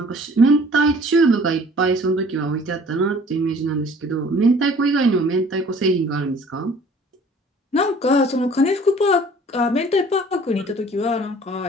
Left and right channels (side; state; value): both; normal; correlation 0.52